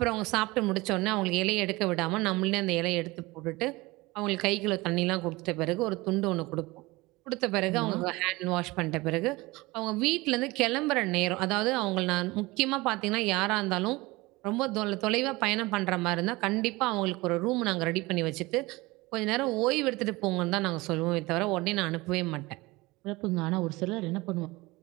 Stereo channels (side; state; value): left; quieter; 21.9 dB